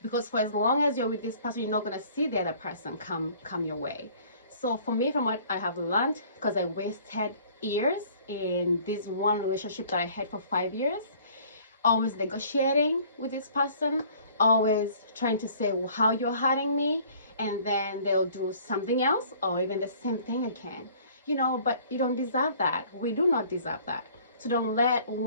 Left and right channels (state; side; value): inverted; both; correlation -0.53